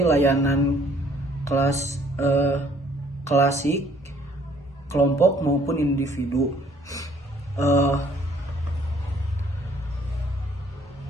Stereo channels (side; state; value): both; normal; correlation 0.61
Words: layanan klasik, kelompok maupun individu.